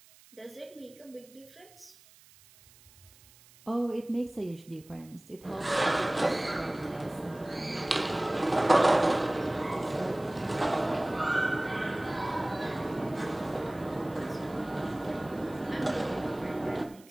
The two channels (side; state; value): right; noise; hiss, 25 dB below the sound